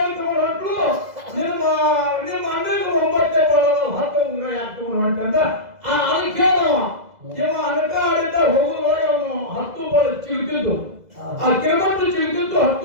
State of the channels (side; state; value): left; late; 2.0 ms